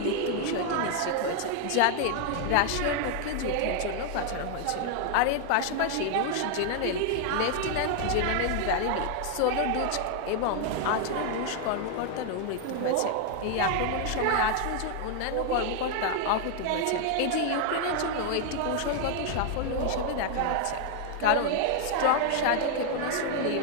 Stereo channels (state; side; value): different; both; correlation 0.00